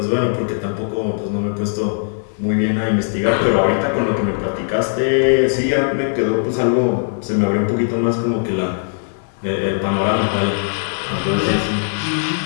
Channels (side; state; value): right; silent; 65 dB below the other